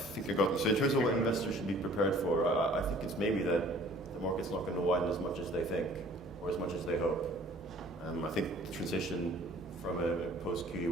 I got them. So in terms of what investors should be prepared for, I think it's maybe that the market's not going to widen as much as they think or as much as they hope. I think the transition from a post-QE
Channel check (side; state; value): both; normal; correlation 0.52